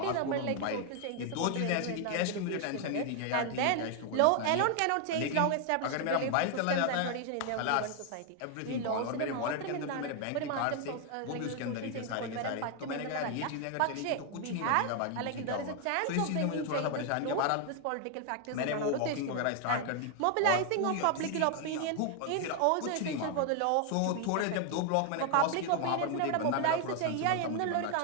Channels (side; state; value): both; different; correlation 0.00